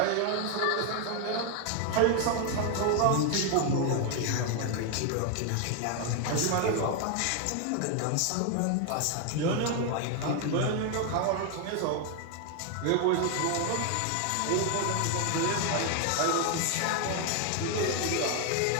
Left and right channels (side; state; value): both; different; correlation 0.00